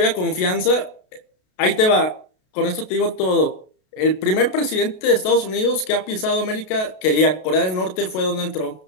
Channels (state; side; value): late; right; 32 ms